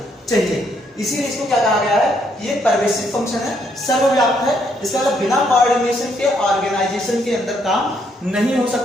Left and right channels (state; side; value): normal; both; correlation 0.72